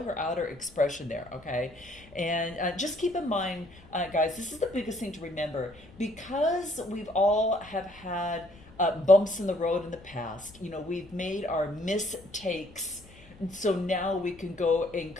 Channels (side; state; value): left; noise; rumble, 23 dB below the sound